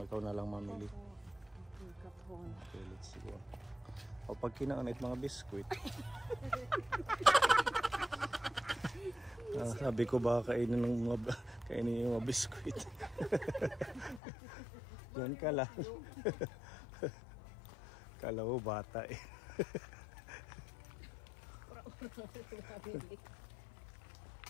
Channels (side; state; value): right; drops out; at 14.2 s